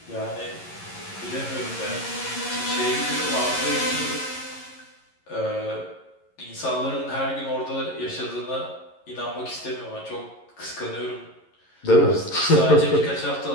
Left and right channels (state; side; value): late; right; 11 ms